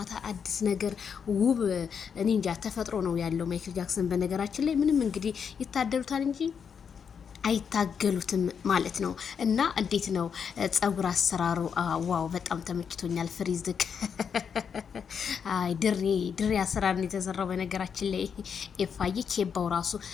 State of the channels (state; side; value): quieter; right; 6.9 dB